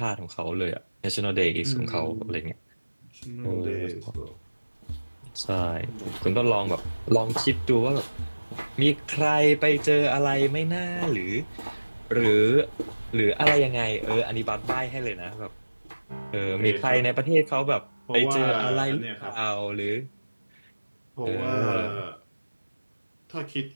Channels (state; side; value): inverted; both; correlation -1.00